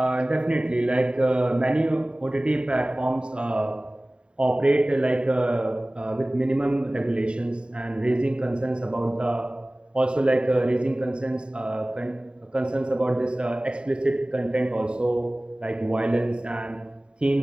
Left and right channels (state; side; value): late; left; 0.051 ms